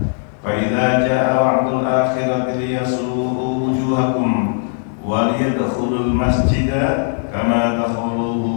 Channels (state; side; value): silent; right; digital silence